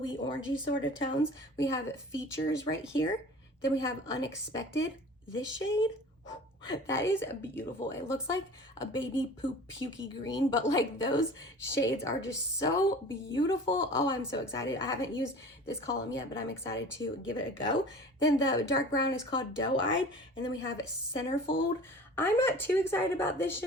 orangey sort of tones, we have Features right here. Then we have Unexpected, this shade. That is beautiful. It looks like a baby poop pukey green, but like those shades are just so beautiful. Oh, I'm so excited. I haven't used this column yet, but I'm excited to give it a go. Then the dark brown is called Doe Eyed, and then we have Centerfold. I'm not too excited about this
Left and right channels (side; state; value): both; normal; correlation 0.41